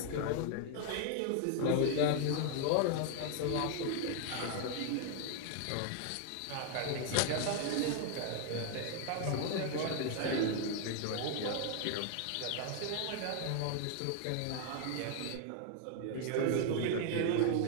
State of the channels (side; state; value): both; different; correlation 0.00